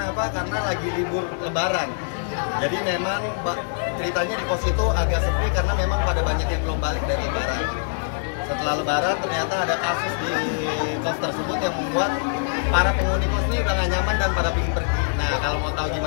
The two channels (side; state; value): right; silent; digital silence